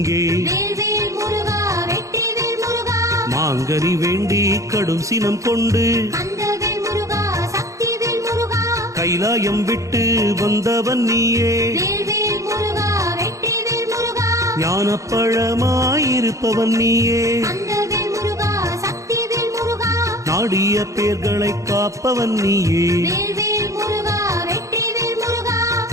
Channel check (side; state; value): left; late; 0.15 ms